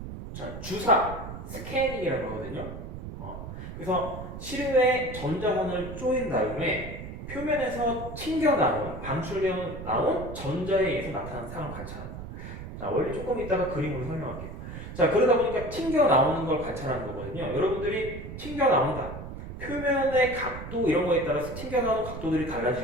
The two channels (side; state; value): right; noise; rumble, 10 dB below the sound